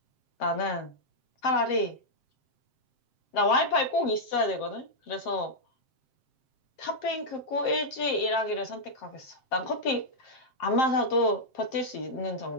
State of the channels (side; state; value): right; late; 7.6 ms